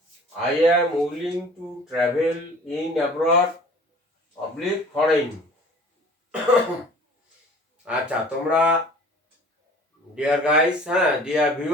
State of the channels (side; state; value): both; normal; correlation 0.47